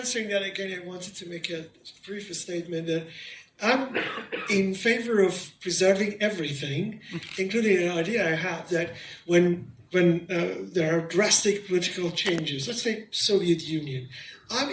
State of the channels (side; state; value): both; identical; correlation 1.00